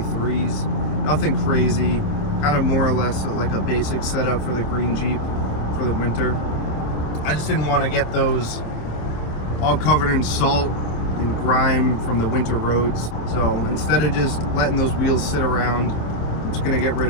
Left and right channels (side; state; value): right; late; 27 ms